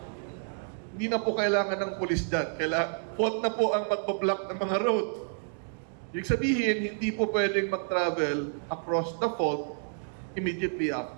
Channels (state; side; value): silent; left; digital silence